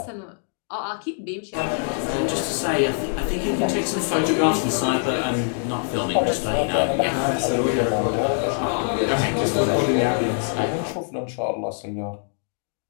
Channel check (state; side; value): silent; right; digital silence